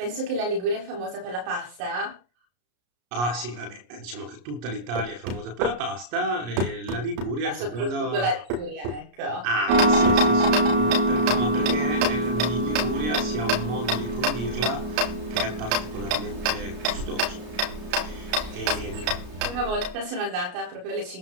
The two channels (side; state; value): left; late; 33 ms